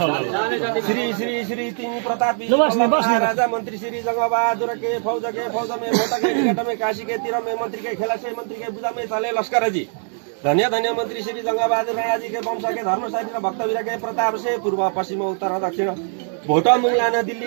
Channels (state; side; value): silent; left; 58 dB below the other